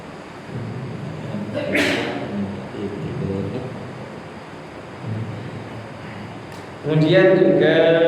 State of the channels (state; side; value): identical; both; correlation 1.00